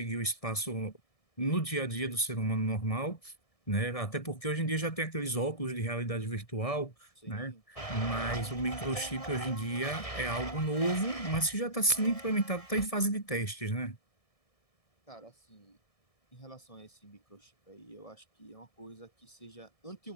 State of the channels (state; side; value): late; right; 1.6 ms